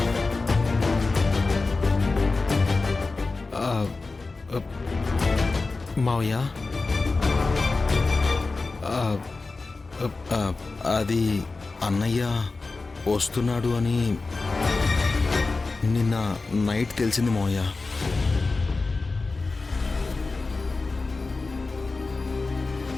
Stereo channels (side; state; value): right; quieter; 3.8 dB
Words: మావయ్య, అది అన్నయ్య వస్తున్నాడు అని నిన్న నైట్ తెలిసింది మావయ్య.